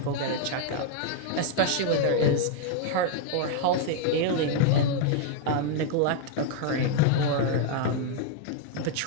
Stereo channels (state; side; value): different; both; correlation 0.00